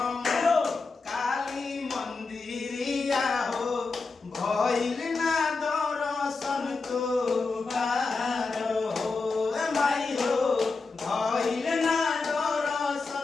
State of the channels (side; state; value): right; quieter; 4.1 dB